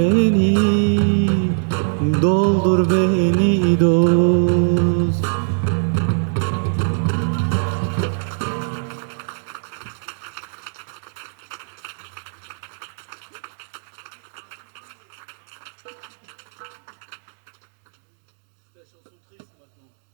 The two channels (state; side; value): silent; left; digital silence